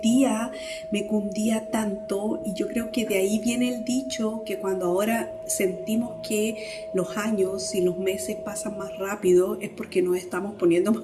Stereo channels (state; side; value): identical; both; correlation 1.00